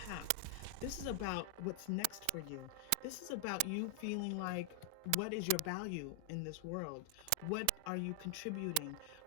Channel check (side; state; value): both; different; correlation 0.00